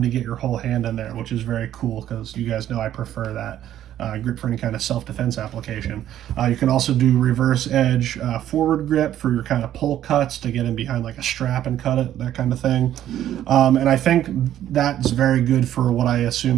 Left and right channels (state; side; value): quieter; left; 11.7 dB